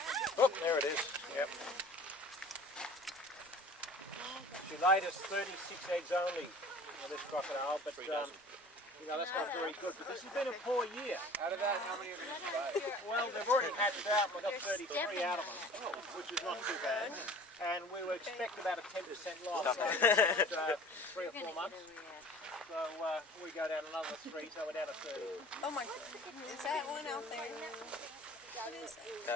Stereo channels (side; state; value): both; normal; correlation 0.45